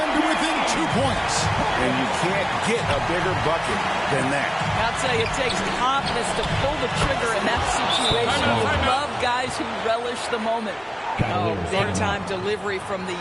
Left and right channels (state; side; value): identical; both; correlation 1.00